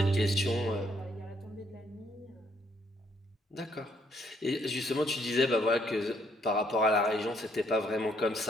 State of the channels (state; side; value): normal; both; correlation 0.69